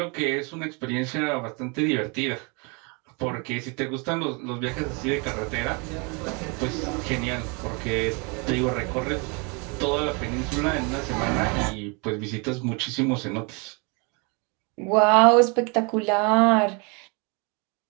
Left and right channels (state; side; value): quieter; left; 31.8 dB